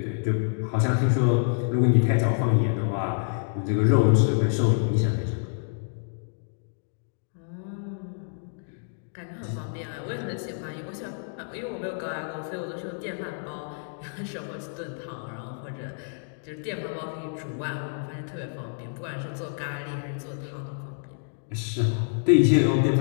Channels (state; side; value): silent; right; digital silence